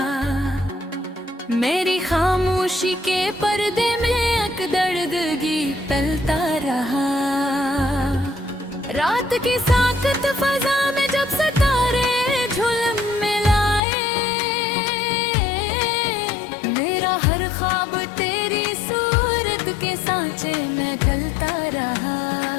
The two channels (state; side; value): drops out; right; at 13.8 s